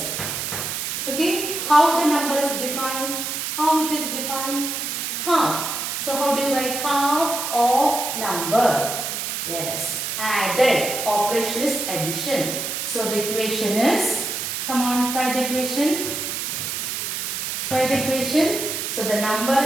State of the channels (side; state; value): right; noise; hiss, 3 dB below the sound